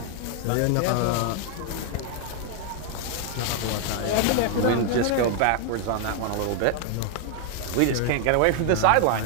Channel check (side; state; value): both; different; correlation 0.00